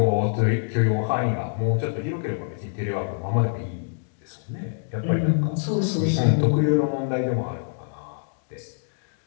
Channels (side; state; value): right; silent; digital silence